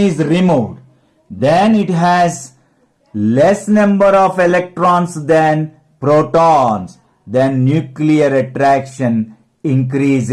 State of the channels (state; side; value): identical; both; correlation 1.00